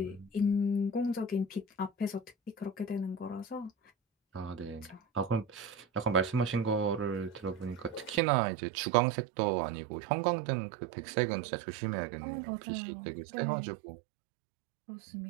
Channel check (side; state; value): left; drops out; at 8.2 s